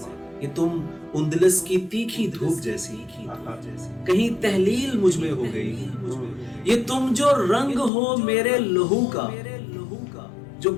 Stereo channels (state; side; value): drops out; right; at 7.9 s